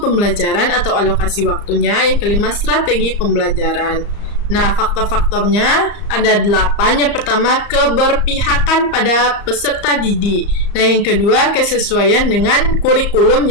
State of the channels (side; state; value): right; late; 35 ms